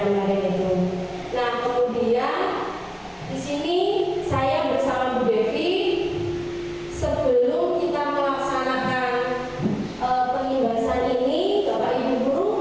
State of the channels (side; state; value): both; identical; correlation 1.00